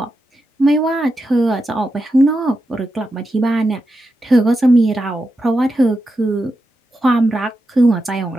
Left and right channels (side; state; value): both; normal; correlation 0.88